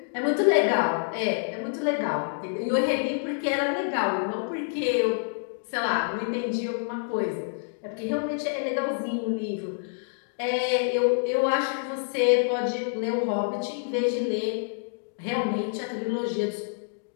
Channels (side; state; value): right; silent; digital silence